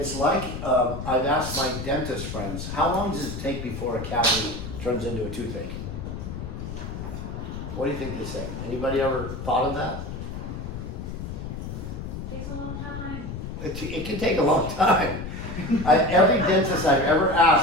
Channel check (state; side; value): noise; left; rumble, 7 dB below the sound